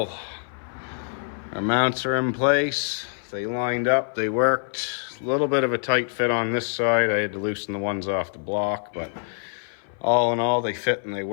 Our mounts are in place. They lined up, they worked. A little bit of a tight fit on this side. I had to loosen the ones off the block, but all in all, they fit and they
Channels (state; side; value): silent; right; 57 dB below the other